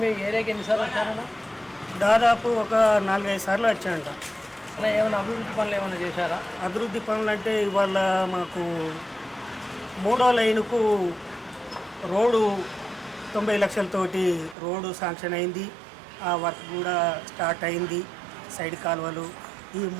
మీ ఏరియాకి ఎన్నిసార్లు వచ్చారన్న? దాదాపు ఒక 4-5 సార్లు వచ్చాయంట. అలా ఏమైనా అభివృద్ధి పనులు ఏమైనా చేశారా? అభివృద్ధి పనులు అంటే ఇవాళ మాకు 3వ లైనుకు రోడ్డు 90 లక్షలతోటి రోడ్డు శాంక్షన్ అయింది. ఆ వర్క్ కూడా స్టార్ట్ అయింది. సైడ్ కాలువలు, ఈ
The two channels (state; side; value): drops out; left; at 14.6 s